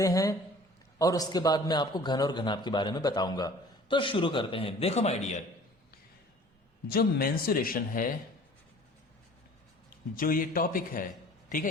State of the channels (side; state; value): both; normal; correlation 0.48